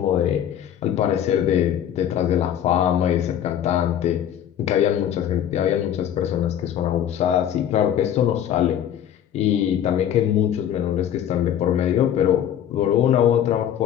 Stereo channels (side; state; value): right; quieter; 10.1 dB